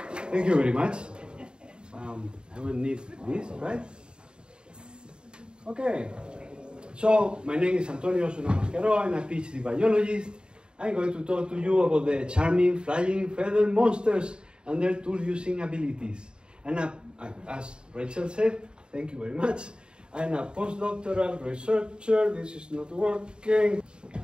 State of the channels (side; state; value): left; late; 0.050 ms